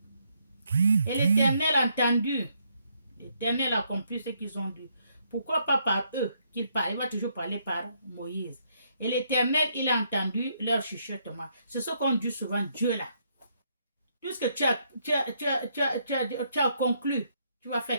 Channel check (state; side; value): inverted; both; correlation -0.74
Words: Et l'Éternel a entendu. L'Éternel a accompli ce qu'ils ont dit. Pourquoi pas par eux qu'il parle? Il va toujours parler par Moïse. Et l'Éternel, il a entendu leur chuchotement. C'est ce qu'on dit souvent, Dieu là. Tout ce que tu as conclu, tu vas